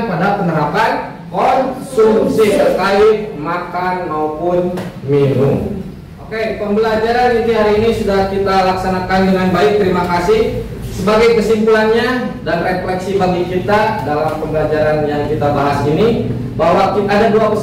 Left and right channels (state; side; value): identical; both; correlation 1.00